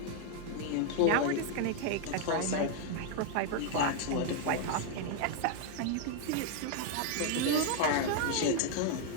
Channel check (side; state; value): both; different; correlation 0.00